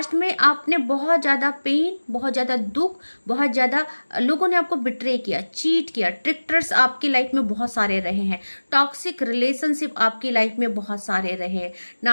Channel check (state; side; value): inverted; both; correlation -1.00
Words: में आपने बहुत ज़्यादा पेन, बहुत ज़्यादा दुख, बहुत ज़्यादा लोगों ने आपको बिट्रे किया, चीट किया, ट्रिक्टर्स आपकी लाइफ में बहुत सारे रहे हैं, टॉक्सिक रिलेशनशिप आपकी लाइफ में बहुत सारे रहे हैं,